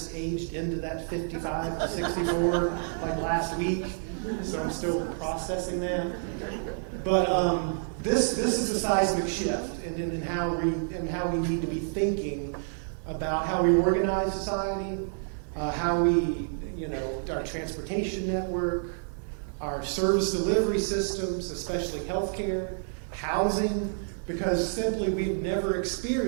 aged into that 55 to 64 like last week. So I'm still processing that. But this is a seismic shift in how we need to be thinking about how we organize society, how we, our transportation network, our service delivery systems, especially healthcare, housing, because simply we've never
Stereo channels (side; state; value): left; silent; 59 dB below the other